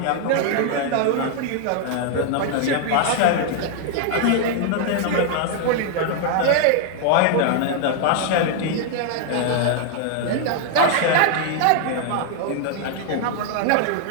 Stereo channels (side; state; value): both; different; correlation 0.00